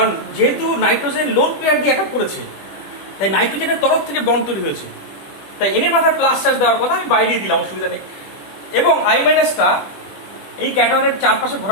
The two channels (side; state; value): right; late; 20 ms